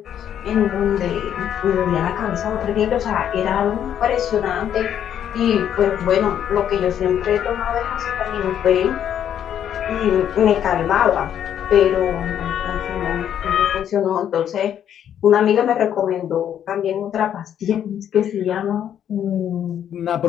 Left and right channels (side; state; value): right; quieter; 9.7 dB